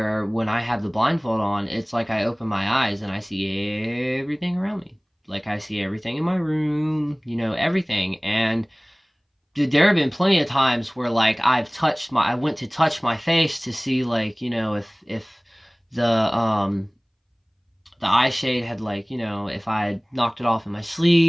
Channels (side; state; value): both; identical; correlation 1.00